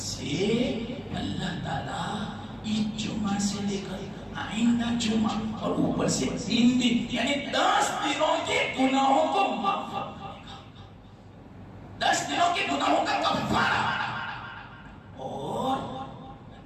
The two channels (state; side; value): identical; both; correlation 1.00